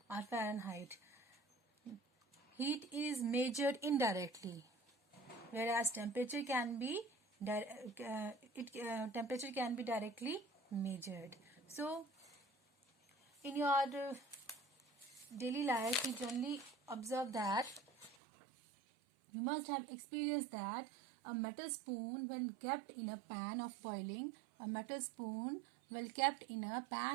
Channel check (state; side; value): drops out; left; at 18.2 s